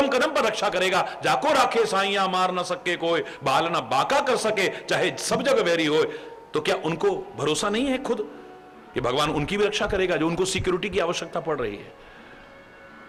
कदम पर रक्षा करेगा। जाको राखे साइया मार न सके कोई, बाल ना बाका कर सके चाहे सब जगह वैरी हो। तो क्या उनको भरोसा नहीं है खुद कि भगवान उनकी भी रक्षा करेगा जो उनको सिक्योरिटी की आवश्यकता पड़ रही है?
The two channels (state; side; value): identical; both; correlation 1.00